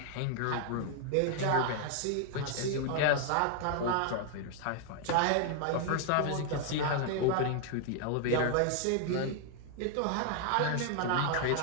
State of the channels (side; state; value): both; different; correlation 0.00